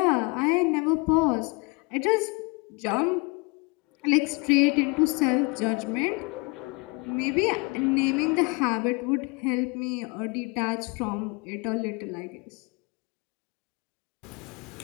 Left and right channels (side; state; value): right; quieter; 29.3 dB